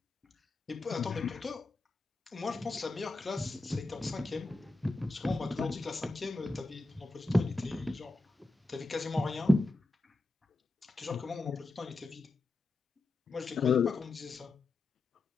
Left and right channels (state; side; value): quieter; right; 3.1 dB